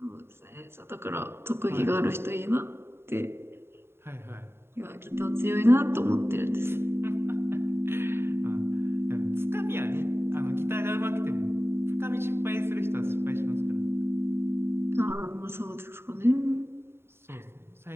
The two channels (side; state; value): left; late; 0.11 ms